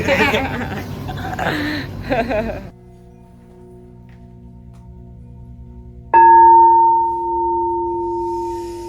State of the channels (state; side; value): identical; both; correlation 1.00